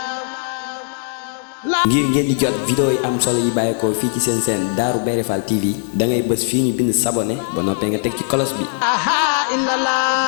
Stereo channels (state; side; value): silent; right; digital silence